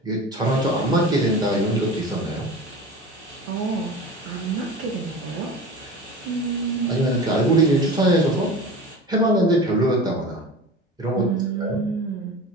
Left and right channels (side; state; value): both; normal; correlation 0.34